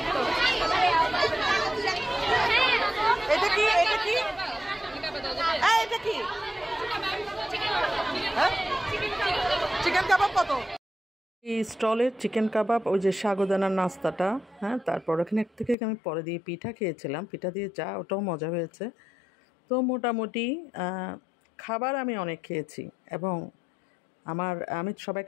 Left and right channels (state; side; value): drops out; right; at 15.8 s